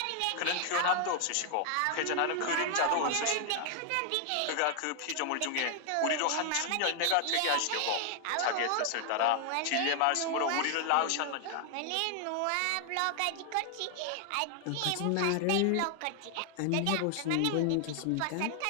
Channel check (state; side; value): different; both; correlation 0.00